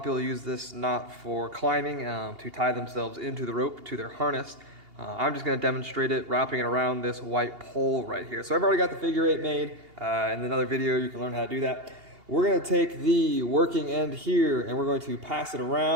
people use this knot for climbing to tie themselves into the rope to their harness. I'm just going to demonstrate it, wrapping it around this white pole right here. So I've already got the figure eight made. In another video, you can learn how to do that. We're going to take the working end here and we're going to pass it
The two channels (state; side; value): late; left; 2.8 ms